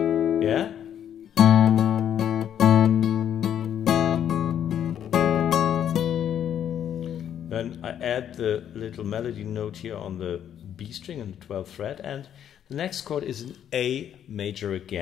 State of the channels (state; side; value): quieter; right; 9.7 dB